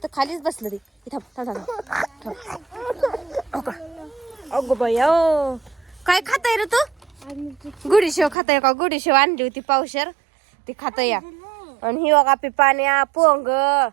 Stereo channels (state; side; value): drops out; left; at 8.3 s